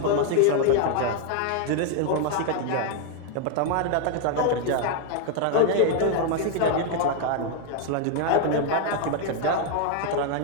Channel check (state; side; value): different; both; correlation 0.00